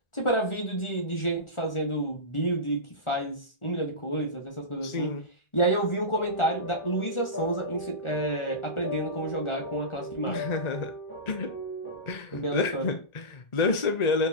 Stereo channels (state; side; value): late; right; 1.4 ms